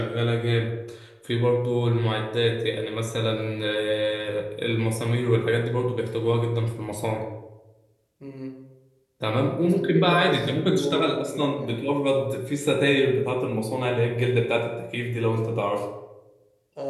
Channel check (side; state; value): both; identical; correlation 1.00